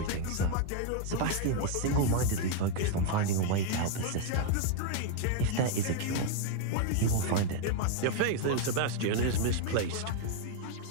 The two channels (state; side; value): different; both; correlation 0.01